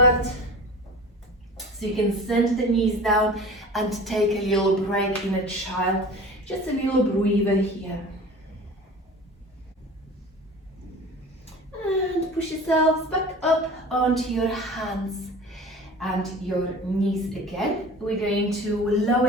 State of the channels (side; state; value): both; normal; correlation 0.38